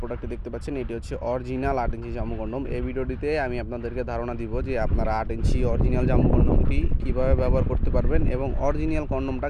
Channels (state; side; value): identical; both; correlation 1.00